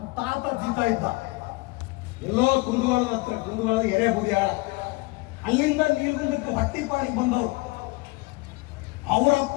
ತಾತ ಜೀತ ಇದ್ದ ಎಲ್ಲೋ ಕುಂದಗೋಳದ ಹತ್ರ, ಕುಂದಗೋಳದ ಎರೆಬುದಿಯಾಳ, ಅಲ್ಲಿಂದ ನೀಲ್ಗುಂದಕ್ಕೆ ಹೊಟ್ಟಿಪಾಡಿಗೆ ಬಂದವರು. ಅವರಪ್ಪ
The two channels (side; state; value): right; quieter; 24.5 dB